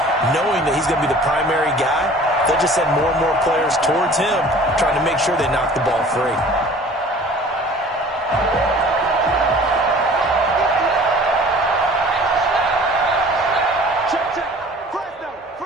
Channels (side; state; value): both; normal; correlation 0.47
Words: knowing that he's going to be the primary guy. They'll just send more and more players towards him, trying to make sure they knock the ball free.